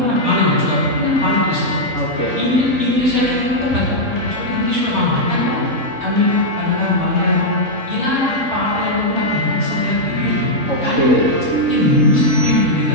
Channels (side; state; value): left; late; 3.7 ms